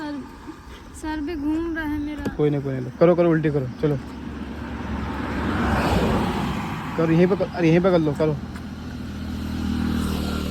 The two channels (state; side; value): identical; both; correlation 1.00